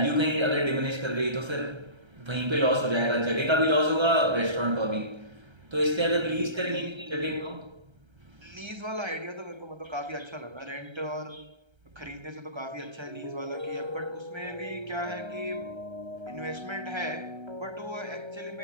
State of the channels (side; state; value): left; late; 1.3 ms